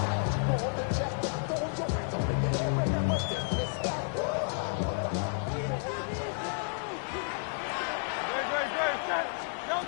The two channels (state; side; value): silent; right; 57 dB below the other